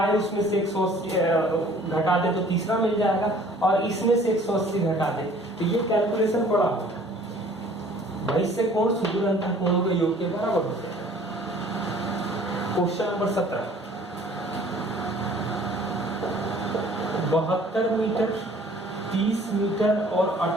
उसमें से 180 घटा दे तो तीसरा मिल जाएगा और इसमें से 180 घटा दे तो ये कैलकुलेशन बड़ा होगा। वैसे कोण सुदूर अंतः कोणों के योग के बराबर होते हैं। क्वेश्चन नंबर 17, 72 मीटर, 30 मीटर और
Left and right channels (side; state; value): both; normal; correlation 0.53